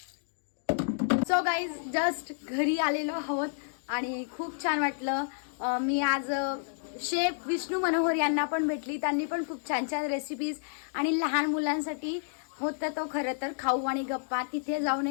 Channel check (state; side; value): silent; right; digital silence